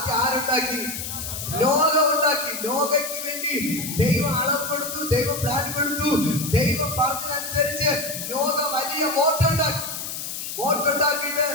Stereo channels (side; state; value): left; noise; hiss, 6 dB below the sound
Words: ആരുണ്ടാക്കി? നോഗ ഉണ്ടാക്കി. നോഗയ്ക്ക് വേണ്ടി ദൈവം അളവ് കൊടുത്തു, ദൈവം പ്ലാൻ കൊടുത്തു. ദൈവം പറഞ്ഞതനുസരിച്ച് നോഗ വലിയ ബോട്ടുണ്ടാക്കിയിട്ട്